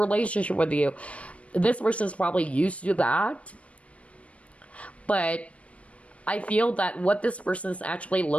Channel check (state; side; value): late; right; 0.064 ms